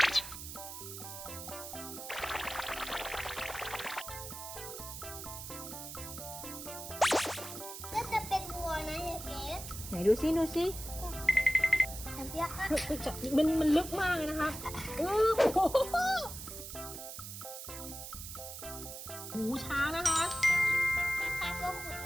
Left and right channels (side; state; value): right; noise; hiss, 9 dB below the sound